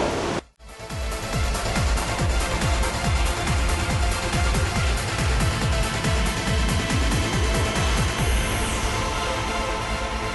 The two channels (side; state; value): both; identical; correlation 1.00